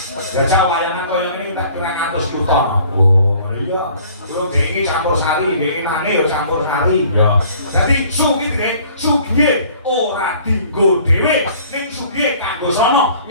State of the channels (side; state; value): both; inverted; correlation -0.53